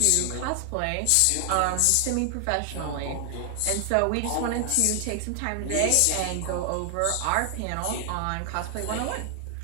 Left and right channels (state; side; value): different; both; correlation 0.00